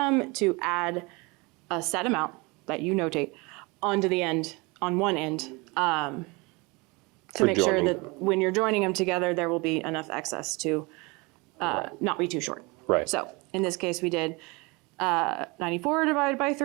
to add a set amount that you notate onto the end, on one end, to make sure joining. that when you're joining them together, there will be enough excess to not be too short. Right. So in this case, we did 94 divided by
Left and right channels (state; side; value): quieter; left; 26.6 dB